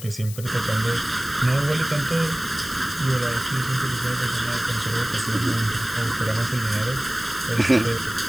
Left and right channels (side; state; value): left; noise; hiss, 13 dB below the sound